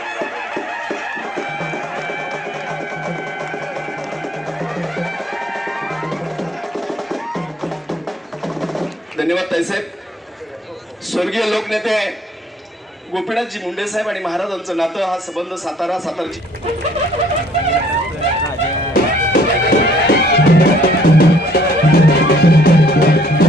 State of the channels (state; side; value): normal; both; correlation 0.61